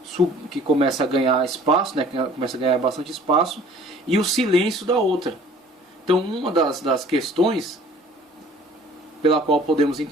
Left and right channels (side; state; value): both; normal; correlation 0.51